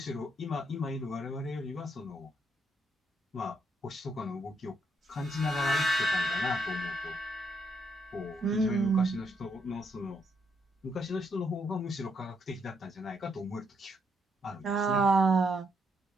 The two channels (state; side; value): normal; both; correlation 0.76